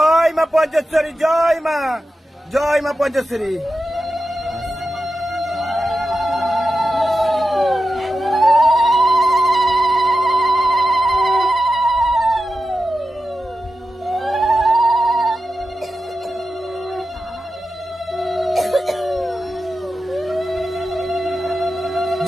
মা পঞ্চেশ্বরী, জয় মা, জয় মা পঞ্চেশ্বরী।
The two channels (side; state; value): both; normal; correlation 0.91